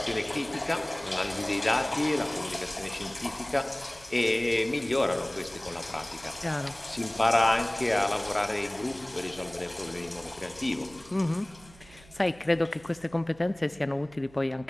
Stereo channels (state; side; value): noise; right; hum, 24 dB below the sound